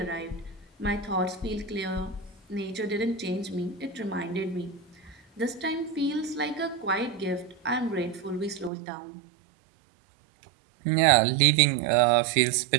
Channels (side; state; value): left; drops out; at 8.7 s